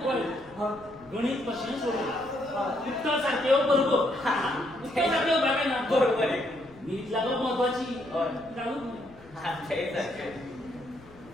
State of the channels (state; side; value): noise; left; rumble, 24 dB below the sound